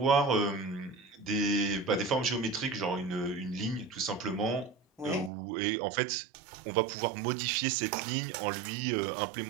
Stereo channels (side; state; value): left; drops out; at 5.3 s